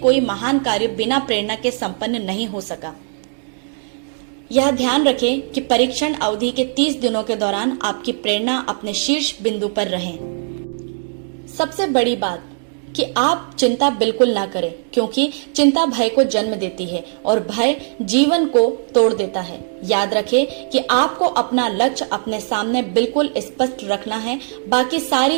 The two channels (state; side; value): silent; left; 66 dB below the other